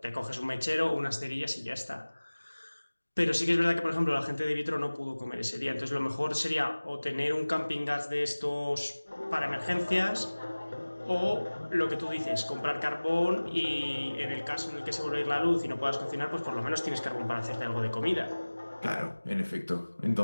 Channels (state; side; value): inverted; both; correlation -1.00